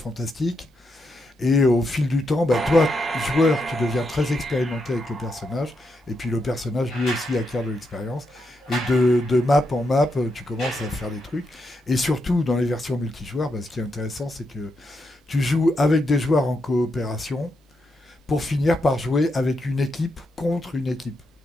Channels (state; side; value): normal; both; correlation 0.83